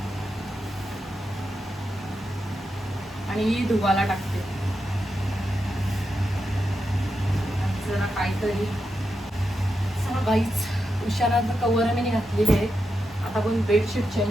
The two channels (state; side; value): normal; both; correlation 0.87